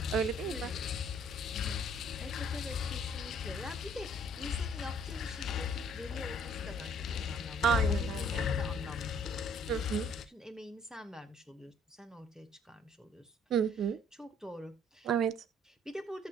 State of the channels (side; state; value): both; normal; correlation 0.59